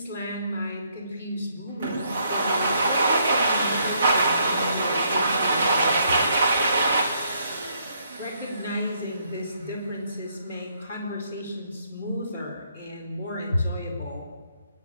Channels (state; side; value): inverted; both; correlation -0.71